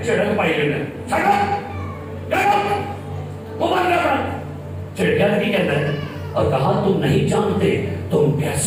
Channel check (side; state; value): both; identical; correlation 1.00